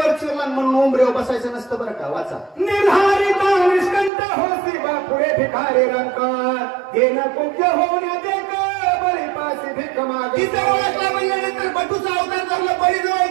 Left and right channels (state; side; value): drops out; left; at 4.1 s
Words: चिरला म्हणून उंबऱ्यावर बसायचं नसतं बरं का वाचा निर्धारिता निष्कंठ होसी पुढे भिकारी रंग येन कुब्ज होण्या देख बळी पाशी भीक मागे तिथे ओळखला म्हणल्यानंतर बटूचा अवतार धरला बळी जवळ